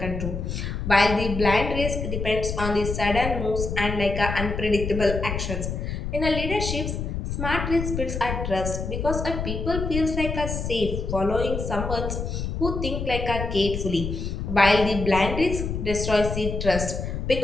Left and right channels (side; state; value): left; noise; rumble, 4 dB below the sound